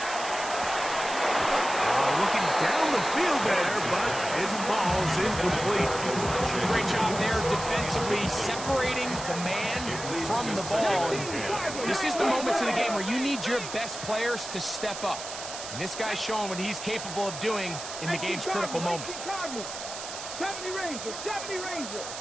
Looking down the field there, but his ball's incomplete. Great job there defensively, separating the man from the ball. And this is the moments of the game where you need your best players to step up. And this guy's showing what he's capable of doing in the game's critical moment. 70 Ranger, 70 Ranger.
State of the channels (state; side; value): noise; right; hiss, 9 dB below the sound